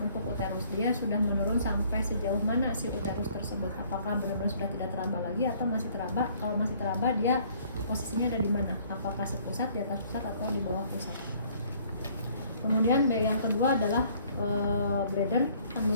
uterus, dia sudah menurun sampai sejauh mana si uterus tersebut, apakah benar-benar sudah tidak teraba lagi atau masih teraba. Kalau masih teraba, dia posisinya ada di mana, apakah sepusat, di atas pusat atau di bawah pusat. Kemudian yang kedua adalah bladder,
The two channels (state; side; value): inverted; both; correlation -0.59